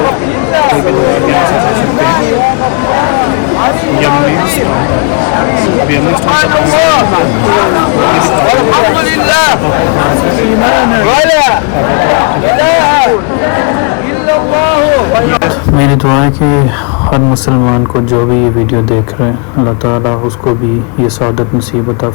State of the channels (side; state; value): right; quieter; 35.1 dB